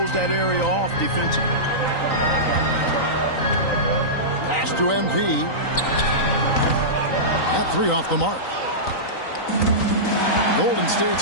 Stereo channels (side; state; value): right; late; 3.9 ms